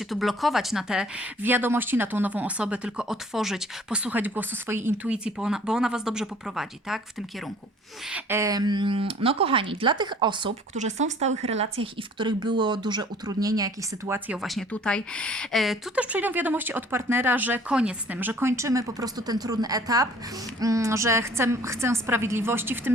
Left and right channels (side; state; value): both; normal; correlation 0.53